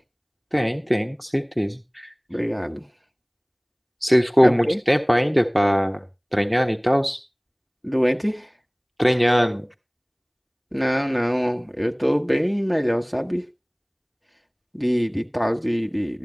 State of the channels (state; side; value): identical; both; correlation 1.00